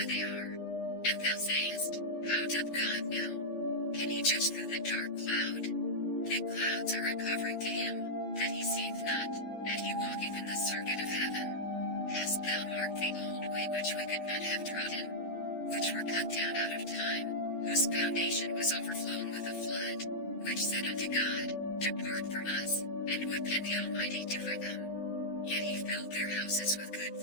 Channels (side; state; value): right; late; 11 ms